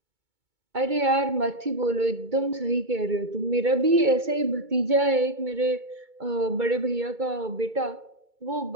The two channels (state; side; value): late; left; 2.2 ms